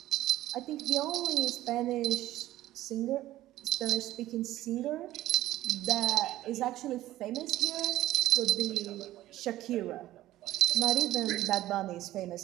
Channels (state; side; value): quieter; left; 15.1 dB